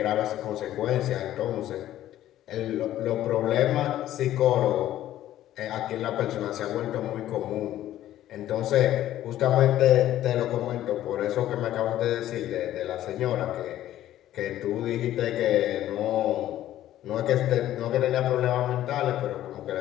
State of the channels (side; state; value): right; quieter; 13.1 dB